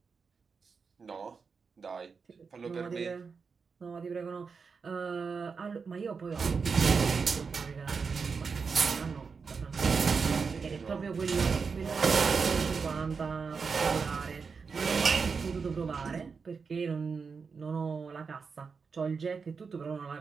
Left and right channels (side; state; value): left; quieter; 5.3 dB